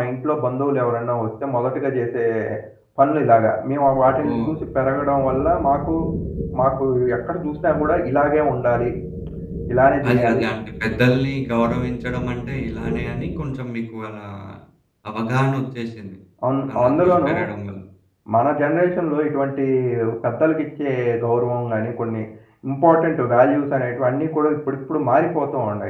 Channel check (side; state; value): both; identical; correlation 1.00